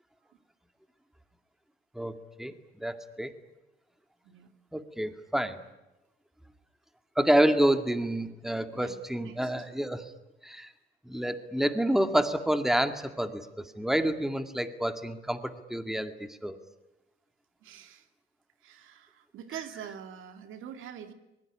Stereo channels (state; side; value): normal; both; correlation 0.94